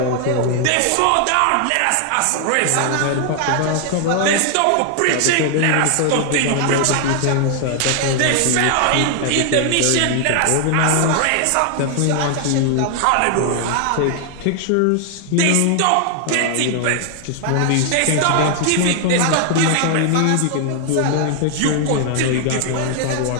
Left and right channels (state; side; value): different; both; correlation 0.00